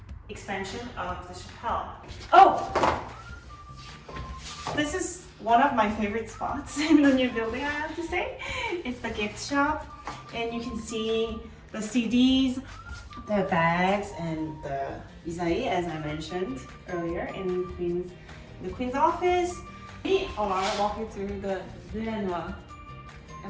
expansion of the chapelle. Oh! This is one of my favorite spots in the new building, I have to say. It's the gift shop, and you can see the CDs, the bags, and the Isaïe, as I mentioned earlier, in the Queen's office. We are walking through the Lia Navarrete.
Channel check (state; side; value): identical; both; correlation 1.00